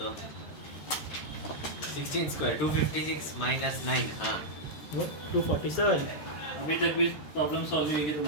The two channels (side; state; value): right; late; 13 ms